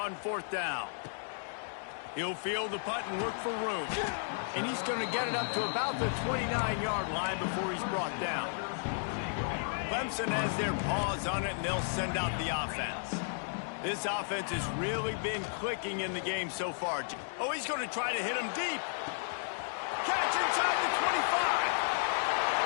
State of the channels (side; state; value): right; silent; digital silence